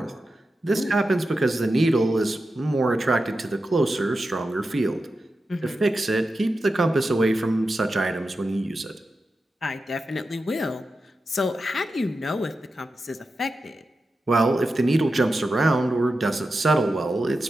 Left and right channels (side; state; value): both; normal; correlation 0.91